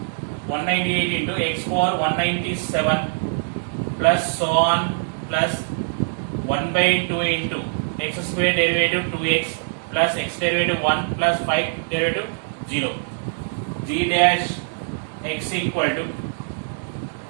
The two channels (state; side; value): silent; left; 61 dB below the other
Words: 198 into x power 197 plus so on plus 1 by 2 into x square derivative 2x plus x derivative 1 plus 5 derivative 0. G dash x equal to,